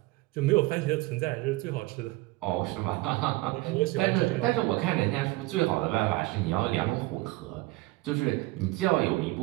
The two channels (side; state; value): left; quieter; 20.9 dB